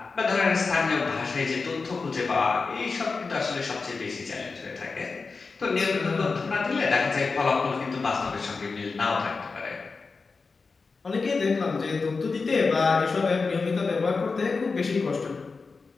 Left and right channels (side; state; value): right; quieter; 4.4 dB